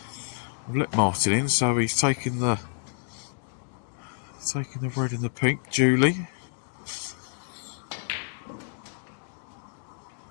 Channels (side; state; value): right; silent; digital silence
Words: I've let Martin in, so he's taking the red and the pink duly.